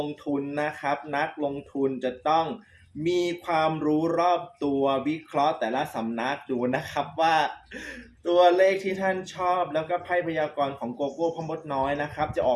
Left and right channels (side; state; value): both; identical; correlation 1.00